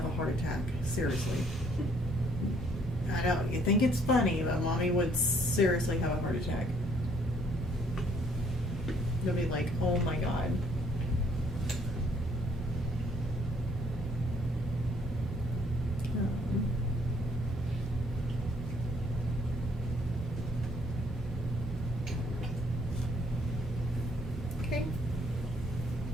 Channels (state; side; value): normal; both; correlation 0.64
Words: a heart attack. Seriously. I know, you think it's funny, but mommy would seriously have a heart attack. You'll be like, oh my God. Okay.